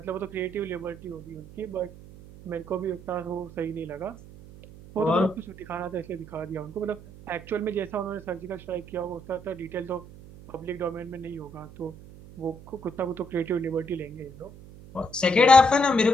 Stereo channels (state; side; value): noise; right; hum, 18 dB below the sound